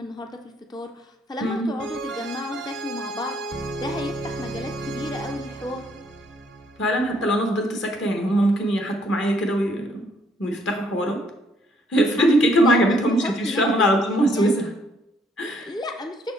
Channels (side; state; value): both; normal; correlation 0.68